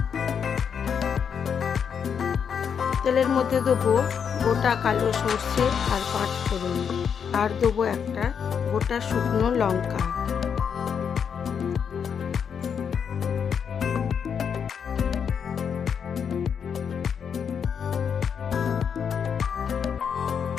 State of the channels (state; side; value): quieter; right; 7.2 dB